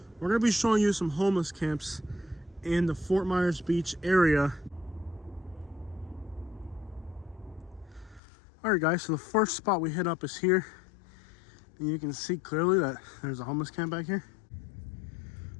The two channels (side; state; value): right; drops out; at 8.2 s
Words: we're going to be showing you some homeless camps in the Fort Myers Beach area. Alright guys, so the first spot we hit up is here. And you can see clearly that there's a homeless camp back here.